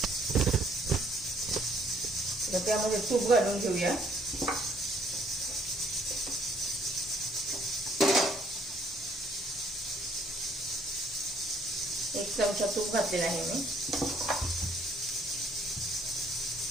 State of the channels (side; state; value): both; normal; correlation 0.63